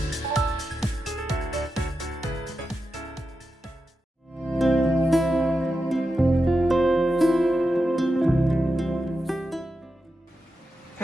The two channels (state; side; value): normal; both; correlation 0.89